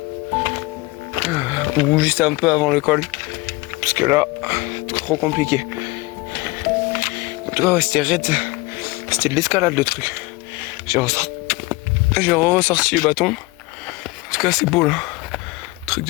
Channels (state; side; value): quieter; right; 22.7 dB